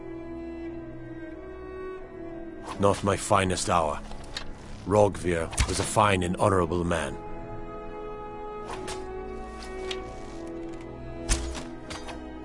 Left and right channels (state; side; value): identical; both; correlation 1.00